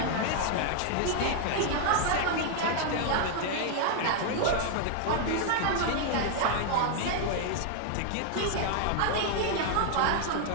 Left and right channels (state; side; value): different; both; correlation 0.00